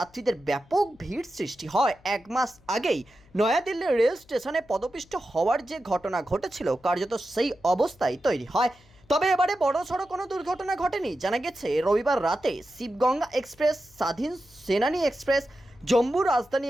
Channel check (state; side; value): noise; left; hum, 28 dB below the sound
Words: ব্যাপক ভিড় সৃষ্টি হয়। 1 মাস আগেই নয়াদিল্লির রেল স্টেশনে পদপিষ্ট হওয়ার যে ঘটনা ঘটেছিল, কার্যত সেই অবস্থায় তৈরি হয়। তবে এবারে বড়সড় কোনো দুর্ঘটনা ঘটেনি। জানা গেছে রবিবার রাতে শিবগঙ্গা এক্সপ্রেস, স্বাধীন সেনানী এক্সপ্রেস, জম্মু রাজধানী